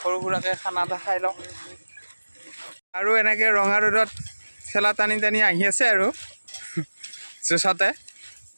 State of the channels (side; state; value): both; inverted; correlation -1.00